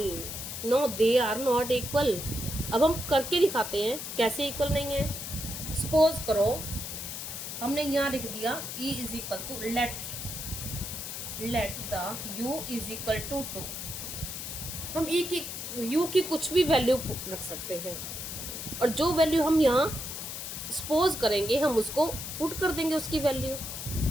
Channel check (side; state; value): left; noise; hiss, 7 dB below the sound